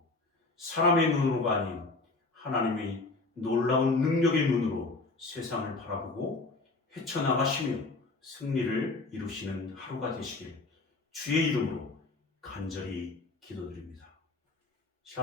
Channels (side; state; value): right; quieter; 3.5 dB